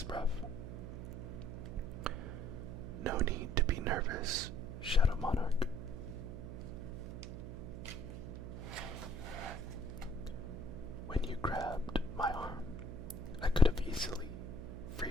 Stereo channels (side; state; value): right; noise; hum, 8 dB below the sound